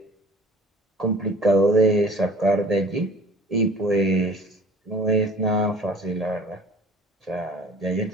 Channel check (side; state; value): both; normal; correlation 0.47